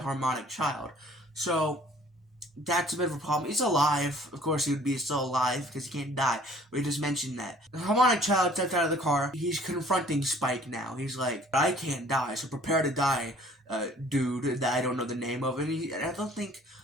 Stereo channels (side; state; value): both; normal; correlation 0.55